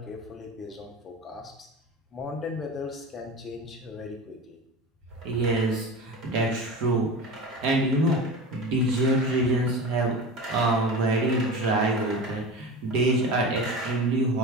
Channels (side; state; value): both; normal; correlation 0.30